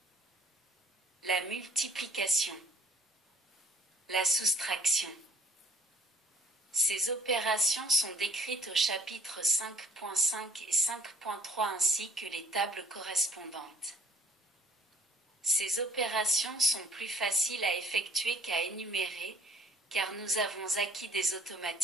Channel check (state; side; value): normal; both; correlation 0.55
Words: La multiplication, la soustraction. Ces opérations sont décrites au chapitre 5.5 et 5.3 ainsi que les tables correspondantes. Ces opérations sont plus faciles à effectuer qu'à énumérer, car nous avons acquis des